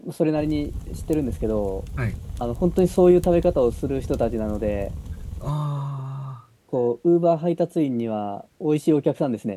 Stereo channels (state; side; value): identical; both; correlation 1.00